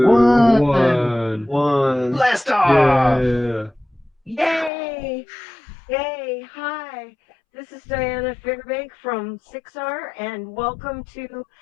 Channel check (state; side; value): drops out; right; at 4.7 s